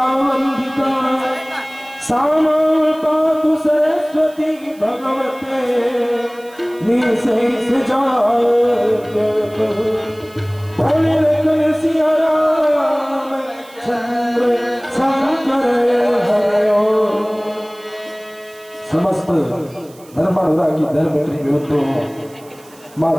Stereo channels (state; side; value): noise; right; hiss, 25 dB below the sound